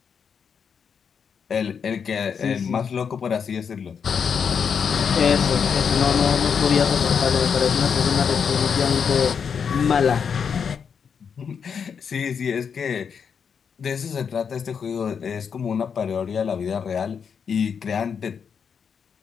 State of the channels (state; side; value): quieter; right; 6.7 dB